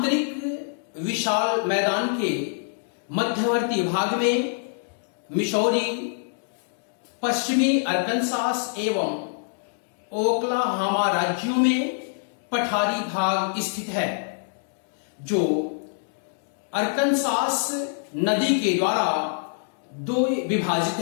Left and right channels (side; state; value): right; silent; digital silence